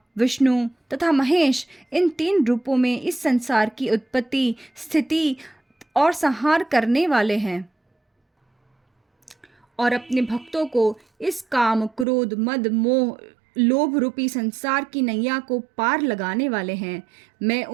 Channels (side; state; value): left; drops out; at 12.1 s